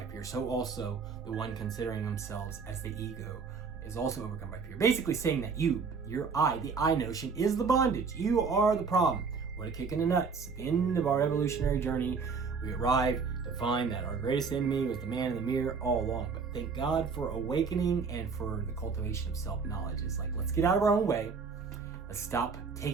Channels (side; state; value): left; quieter; 5.2 dB